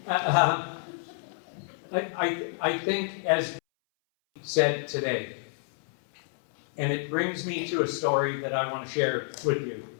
I think, as said today, and it brings me to a story that I want to share with you.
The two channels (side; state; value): right; silent; 59 dB below the other